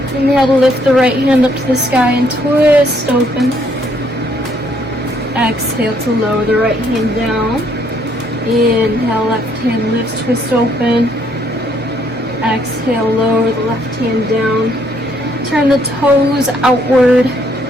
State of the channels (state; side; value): normal; both; correlation 0.68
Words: Inhale to lift the right hand up to the sky and twist open. Exhale to lower the right hand down. Inhale, left hand lifts, twist open. Exhale, lower the left hand down. Turn the toes outward.